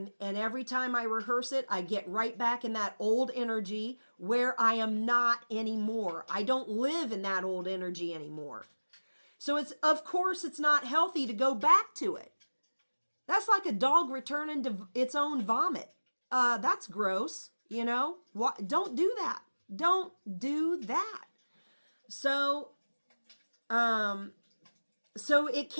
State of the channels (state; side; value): inverted; both; correlation -1.00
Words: every time I rehearse it, I get right back in that old energy where I am not anymore. I don't live in that old energy anymore. So of course it's not healthy to go back to it. That's like a dog returning to its own vomit. That's gross, Don't do that. Don't do that. So it